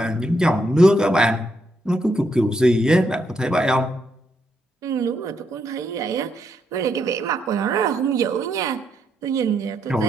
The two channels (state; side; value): normal; both; correlation 0.78